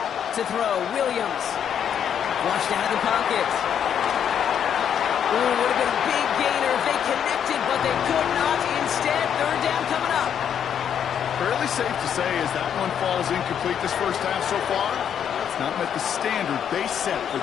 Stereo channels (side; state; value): right; quieter; 8.6 dB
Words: To throw, Williams. Flushed out of the pocket. Ooh, would have been a big gainer if they connected, but they could not. Instead, 3rd down coming up. Fairly safe to say as that one falls incomplete this first half so far. It's not met the standard they set for